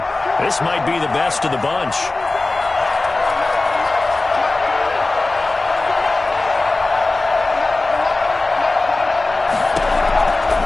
This might be the best of the bunch.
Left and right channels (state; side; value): quieter; right; 3.2 dB